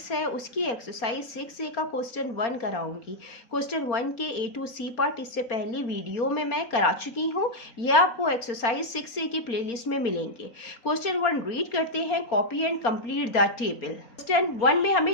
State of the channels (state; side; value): late; right; 4.3 ms